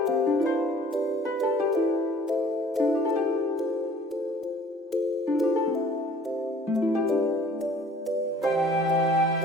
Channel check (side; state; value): both; normal; correlation 0.52